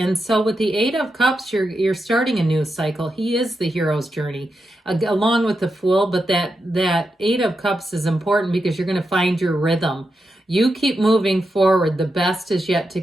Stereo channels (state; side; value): normal; both; correlation 0.87